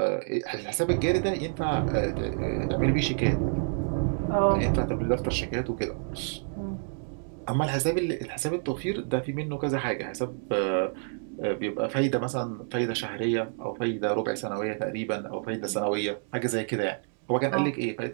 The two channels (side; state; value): left; silent; 59 dB below the other